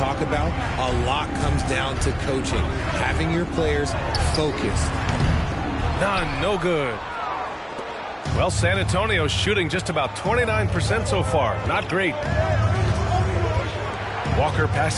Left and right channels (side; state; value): both; identical; correlation 1.00